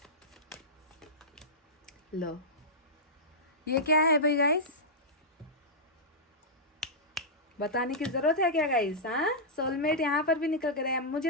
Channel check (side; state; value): both; normal; correlation -0.12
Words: लो ये क्या है भाई गाइस, बताने की जरूरत है क्या गाइस। हाँ, सोलमेट यहाँ पर भी निकल कर आया।